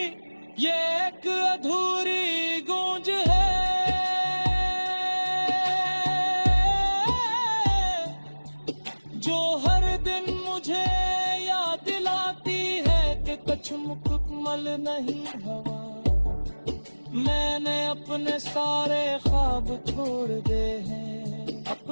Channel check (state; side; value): inverted; both; correlation -1.00